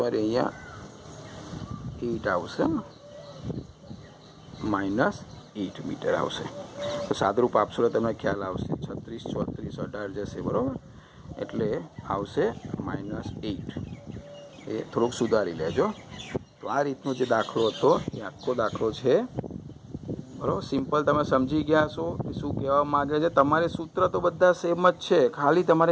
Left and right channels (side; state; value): both; identical; correlation 1.00